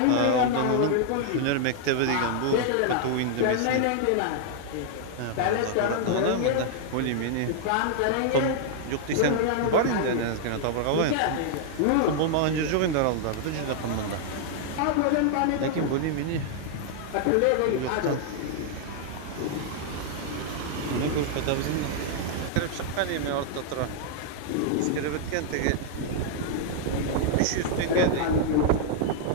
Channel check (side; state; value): both; different; correlation -0.01